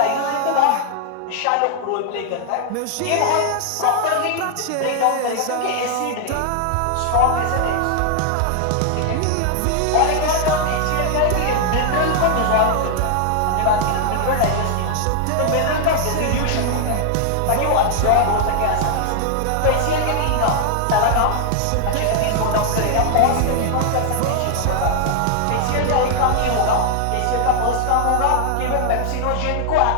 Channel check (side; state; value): both; different; correlation 0.00